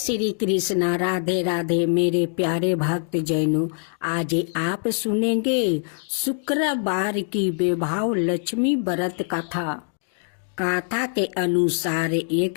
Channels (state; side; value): silent; right; 63 dB below the other